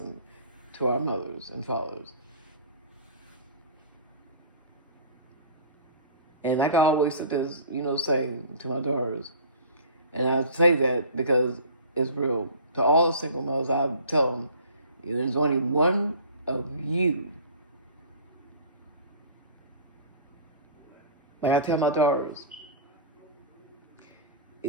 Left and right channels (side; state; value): both; inverted; correlation -0.42